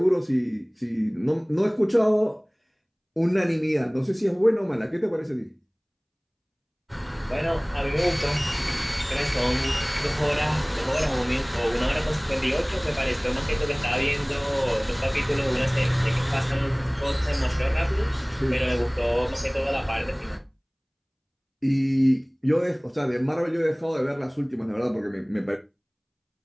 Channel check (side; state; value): both; identical; correlation 1.00